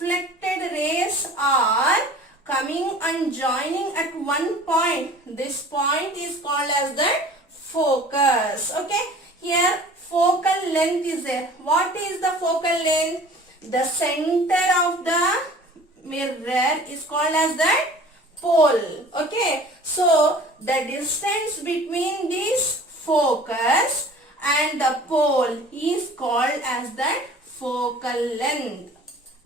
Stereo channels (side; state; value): both; normal; correlation 0.46